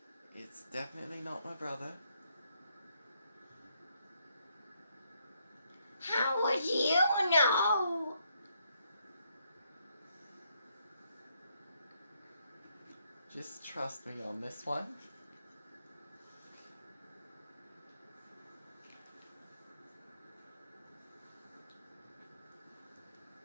It's definitely not my brother. How would you know? Just trust me on this one.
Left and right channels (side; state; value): both; inverted; correlation -0.74